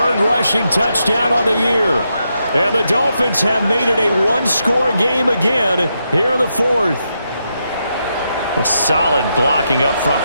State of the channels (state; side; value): inverted; both; correlation -0.83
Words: rushing touchdown on the year. And the Dolphins have made it a 1-score game again here in the 4th. Well, solid blocking up front